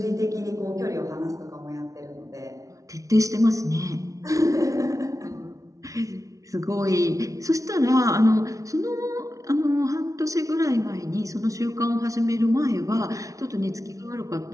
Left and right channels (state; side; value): late; left; 0.16 ms